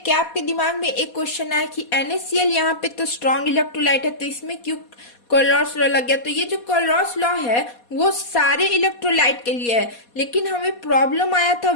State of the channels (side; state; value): right; late; 4.2 ms